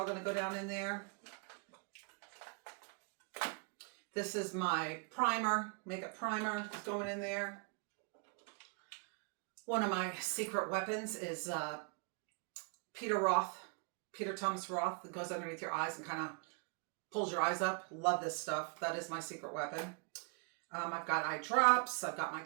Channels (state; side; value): quieter; left; 36.0 dB